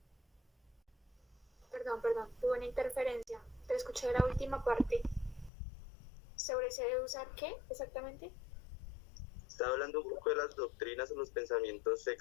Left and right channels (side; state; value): right; drops out; at 5.5 s